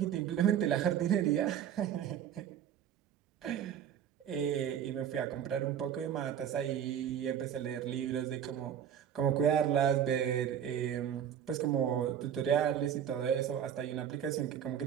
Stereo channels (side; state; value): left; quieter; 9.3 dB